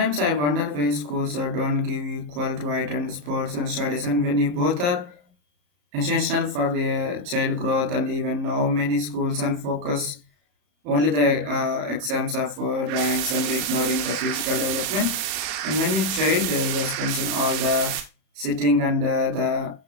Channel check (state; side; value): late; left; 34 ms